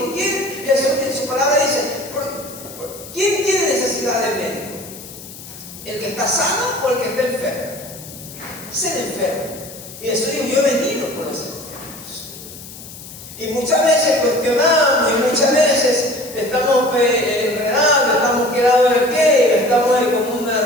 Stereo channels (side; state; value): left; noise; hiss, 15 dB below the sound